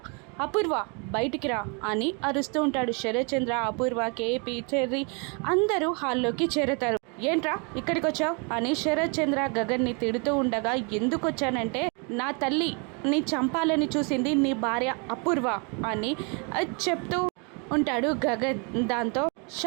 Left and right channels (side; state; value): left; quieter; 34.4 dB